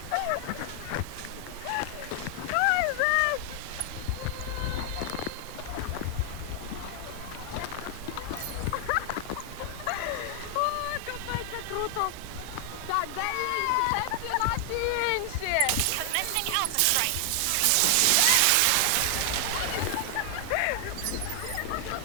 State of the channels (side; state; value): both; different; correlation 0.00